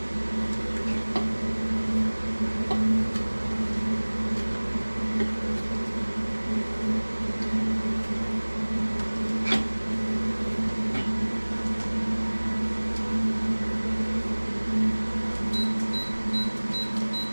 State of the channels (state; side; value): inverted; both; correlation -1.00